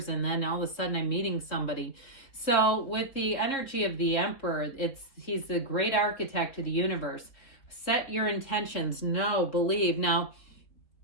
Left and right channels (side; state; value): right; late; 3.9 ms